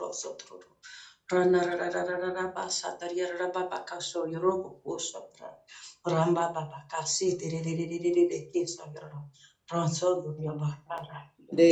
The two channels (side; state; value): both; identical; correlation 1.00